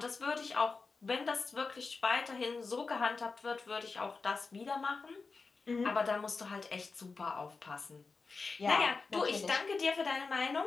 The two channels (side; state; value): right; quieter; 4.3 dB